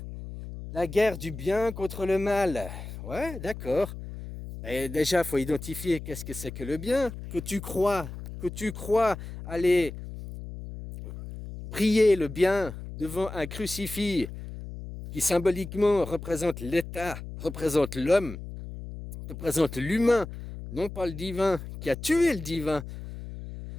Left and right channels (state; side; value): noise; left; hum, 10 dB below the sound